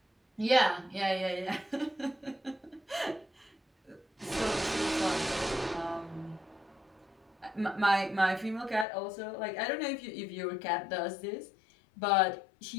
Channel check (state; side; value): drops out; right; at 8.8 s